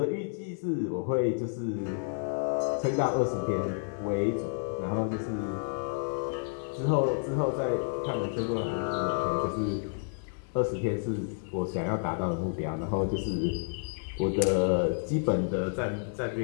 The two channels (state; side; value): silent; right; digital silence